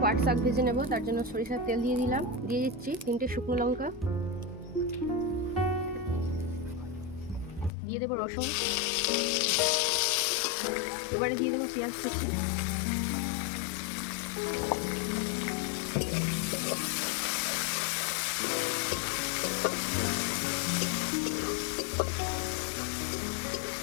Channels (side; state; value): right; drops out; at 7.7 s